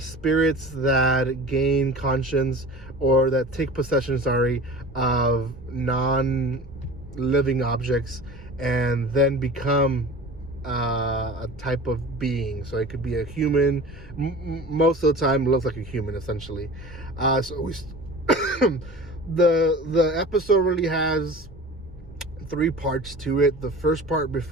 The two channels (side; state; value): both; normal; correlation 0.38